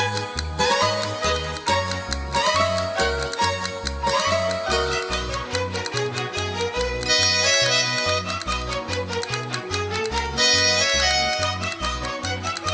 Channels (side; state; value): both; identical; correlation 1.00